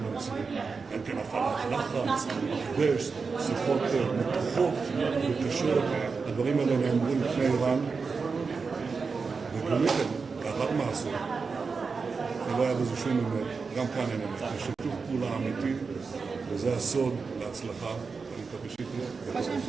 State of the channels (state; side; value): quieter; left; 4.8 dB